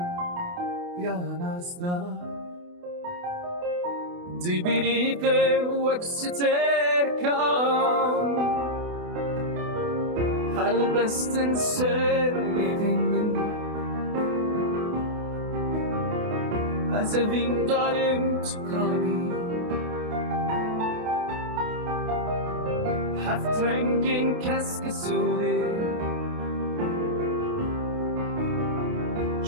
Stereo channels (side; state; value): left; late; 28 ms